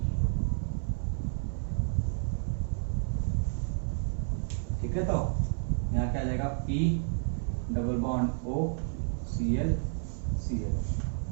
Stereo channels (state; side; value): silent; left; 56 dB below the other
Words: ठीक है, तो यहाँ क्या आ जाएगा, P double bond O Cl Cl।